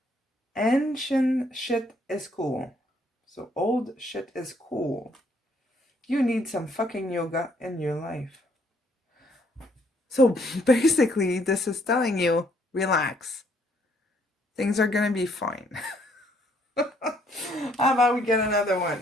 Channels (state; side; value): normal; both; correlation 0.67